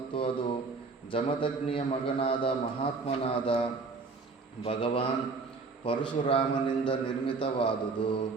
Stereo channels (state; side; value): quieter; left; 4.3 dB